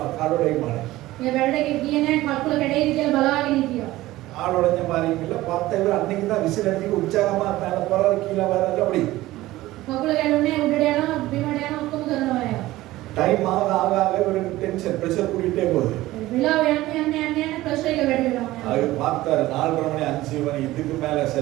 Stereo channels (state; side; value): quieter; left; 17.0 dB